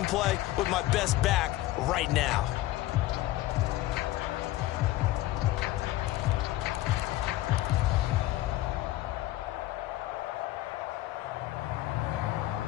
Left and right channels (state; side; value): quieter; right; 16.1 dB